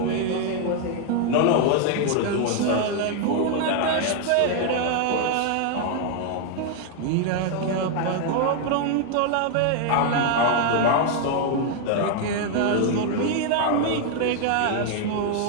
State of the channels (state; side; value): different; both; correlation 0.00